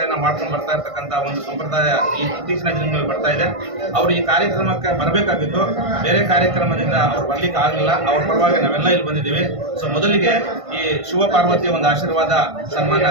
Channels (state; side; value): late; left; 1.5 ms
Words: ಮಾಡ್ಕೊಂಡು ಬರ್ತಾ ಇರ್ತಕ್ಕಂಥ ಒಂದು ಸಂಪ್ರದಾಯ ಈ ಇತ್ತೀಚಿನ ದಿನಗಳಲ್ಲಿ ಬರ್ತಾ ಇದೆ. ಅವರು ಈ ಕಾರ್ಯಕ್ರಮಕ್ಕೆ ಬರಬೇಕಾಗಿತ್ತು, ಬೇರೆ ಕಾರ್ಯಕ್ರಮದಿಂದ ಅವ್ರು ಬರ್ಲಿಕ್ಕೆ ಆಗಲಿಲ್ಲ. ಅವ್ರ ಪರವಾಗಿ ನಾವೆಲ್ಲ ಇಲ್ಲಿ ಬಂದಿದ್ದೀವಿ. ಸೊ ಮೊದಲಿಗೆ ಈ ಶಿವ ಪಾರ್ವತಿಯ ಒಂದು ಆಶೀರ್ವಾದ